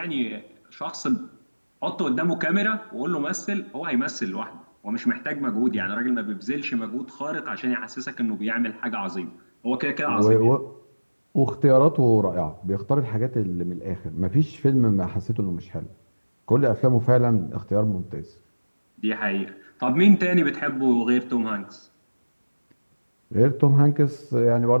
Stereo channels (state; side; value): inverted; both; correlation -1.00